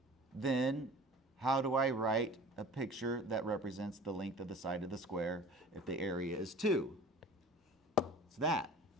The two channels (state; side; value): normal; both; correlation 0.43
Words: Then how do I write a picture that represents the length of the side of the square if the area is 2? It's that.